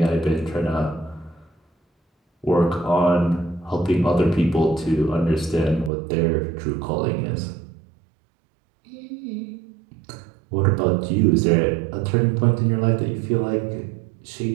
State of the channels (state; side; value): drops out; left; at 5.9 s